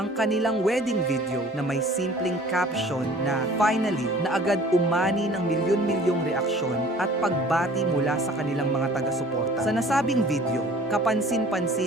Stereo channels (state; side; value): normal; both; correlation 0.49